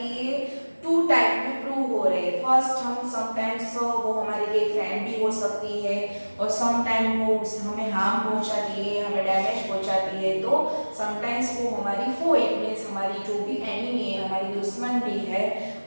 टू टाइप में प्रूव हो रहे हैं. फर्स्ट हम समटाइम्स वो हमारे लिए फ्रेंड भी हो सकती है और समटाइम वो हमें हार्म पहुंचाती है, हमें डैमेज पहुंचाती है. तो समटाइम्स वो हमारी फो, इट मीन्स हमारी जो भी एनिमी है, हमारी दुश्मन भी है,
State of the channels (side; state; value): both; inverted; correlation -1.00